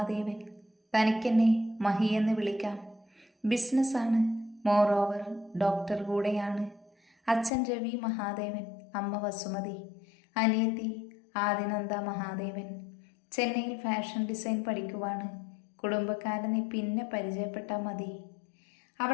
തനിക്കെന്നെ മഹി എന്ന് വിളിക്കാം. ബിസിനസ്സാണ്, മോറോവർ ഡോക്ടർ കൂടെയാണ്. അച്ഛൻ രവി മഹാദേവൻ, അമ്മ വസുമതി, അനിയത്തി ആദിനന്ദ മഹാദേവൻ. ചെന്നൈയിൽ ഫാഷൻ ഡിസൈൻ പഠിക്കുവാണ്. കുടുംബക്കാരനെ പിന്നെ പരിചയപ്പെട്ടാൽ മതി.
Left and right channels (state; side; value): drops out; right; at 7.5 s